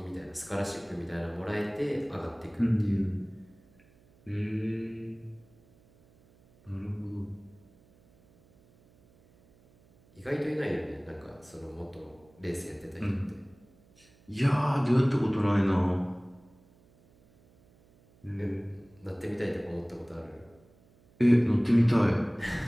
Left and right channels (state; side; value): noise; right; hum, 29 dB below the sound